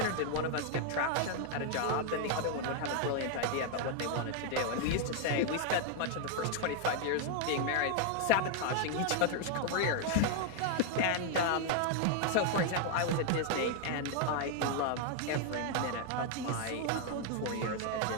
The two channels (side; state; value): both; different; correlation 0.00